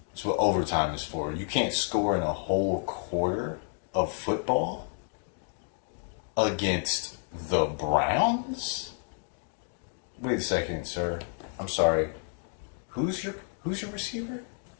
That's what overtime is for. You can't score in a whole quarter of football against the Browns? Wait a second, sir. I'm sorry. Who's your receiver?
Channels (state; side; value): silent; right; 58 dB below the other